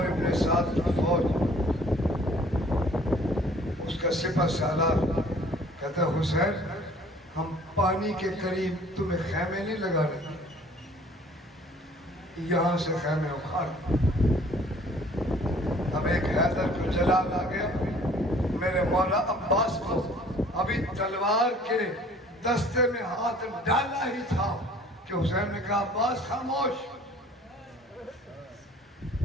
ابن سعد کی فوج، اس کا سپہ سالار کہتا ہے حسین ہم پانی کے قریب تمہیں خیمے نہیں لگانے دیں، یہاں سے خیمے اکھاڑ۔ اب ایک حیدر کو جلال آ گیا، میرے مولا عباس کو ابھی تلوار کے دستے میں ہاتھ ڈالا ہی تھا کہ حسین نے کہا عباس خاموش۔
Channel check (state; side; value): normal; both; correlation 0.54